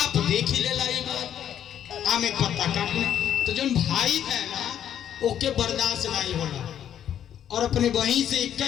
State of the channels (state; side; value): quieter; right; 9.9 dB